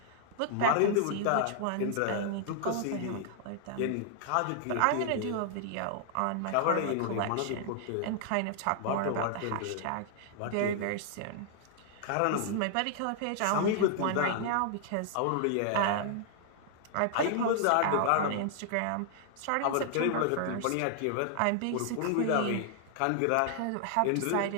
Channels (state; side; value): different; both; correlation -0.01